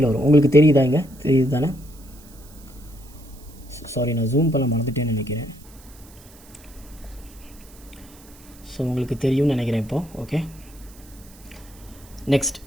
வரும். உங்களுக்கு தெரியுதா? இங்கே தெரியுது தானே? சாரி, நான் ஜூம் பண்ண மறந்துட்டேன்னு நினைக்கிறேன். ஸோ உங்களுக்கு தெரியும்னு நினைக்கிறேன் இப்போது. ஓகே, நெக்ஸ்ட்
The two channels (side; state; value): right; noise; hiss, 23 dB below the sound